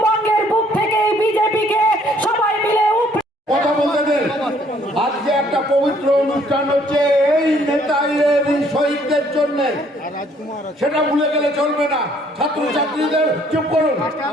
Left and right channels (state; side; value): normal; both; correlation 0.63